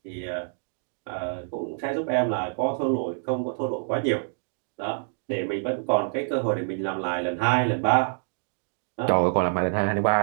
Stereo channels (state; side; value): silent; left; digital silence